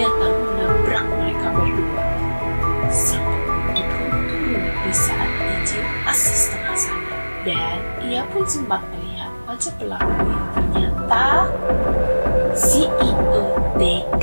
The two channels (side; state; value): both; inverted; correlation -1.00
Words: menabrak mereka berdua. Sampai turun di saat Yije masih setengah sadar, dan ia pun sempat melihat wajah pelakunya. Ternyata CEO